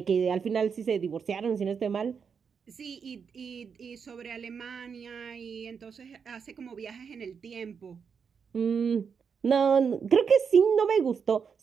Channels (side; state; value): left; quieter; 6.3 dB